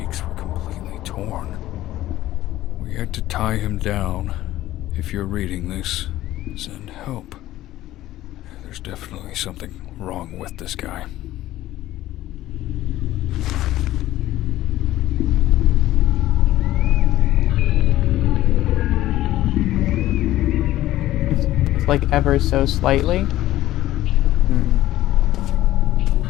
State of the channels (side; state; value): right; quieter; 14.8 dB